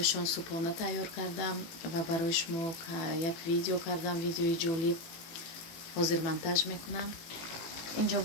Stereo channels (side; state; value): right; late; 18 ms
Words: субҳона тайёр кардам ва барои шумо як видео кардам. видеои ҷолиб ҳозир монтаж мекунам. инҷо